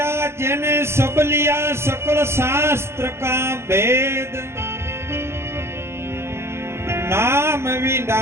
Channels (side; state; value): left; late; 0.12 ms